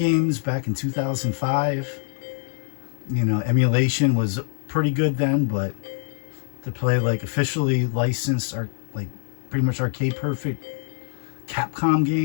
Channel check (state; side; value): silent; right; 61 dB below the other